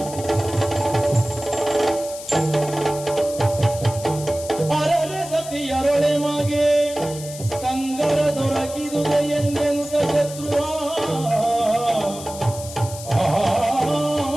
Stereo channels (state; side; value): noise; left; hiss, 13 dB below the sound